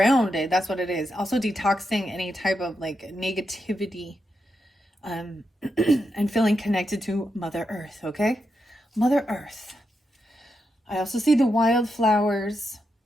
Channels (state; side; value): normal; both; correlation 0.85